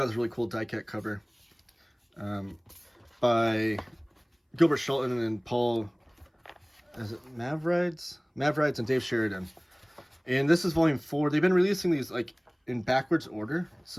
this really cool die-cut cover by Gilbert Shelton and Paul, is it Mavrides and Dave Sheridan. And this is Volume 4. They've been releasing these like in backwards order.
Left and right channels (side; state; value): both; identical; correlation 1.00